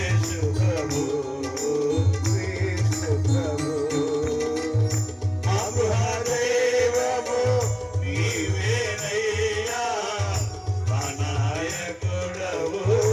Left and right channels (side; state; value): both; identical; correlation 1.00